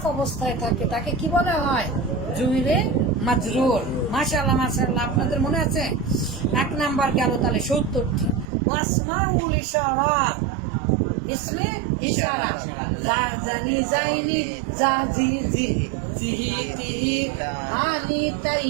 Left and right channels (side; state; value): left; drops out; at 8.5 s